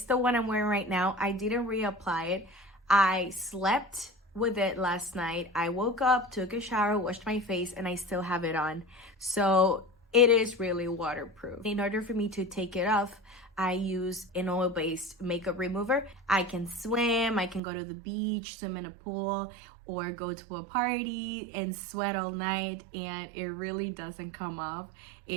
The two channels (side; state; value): left; drops out; at 17.6 s